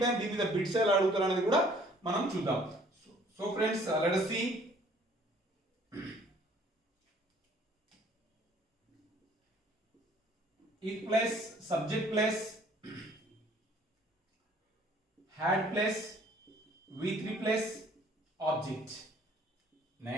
టైం దీని మీద బిట్స్ ఎలా అడుగుతారు అనేది కూడా మనం చూద్దాం. So friends, let us see. If plus subject plus had plus V3 plus object.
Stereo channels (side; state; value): both; normal; correlation 0.57